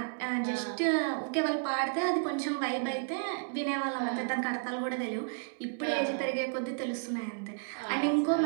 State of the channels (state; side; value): silent; left; 56 dB below the other